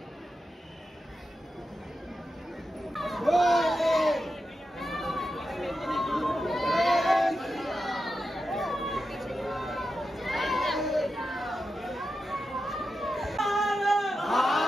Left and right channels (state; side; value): normal; both; correlation 0.89